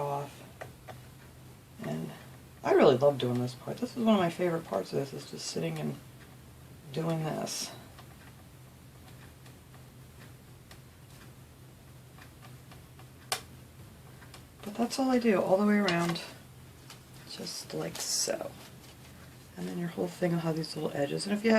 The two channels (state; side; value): identical; both; correlation 1.00